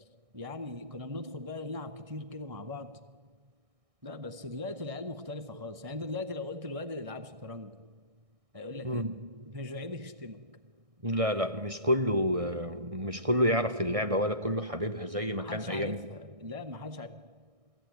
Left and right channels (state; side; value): late; left; 1.6 ms